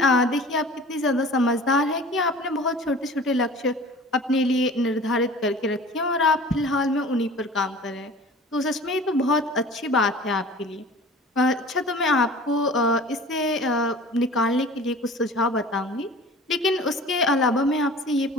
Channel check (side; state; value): both; normal; correlation 0.42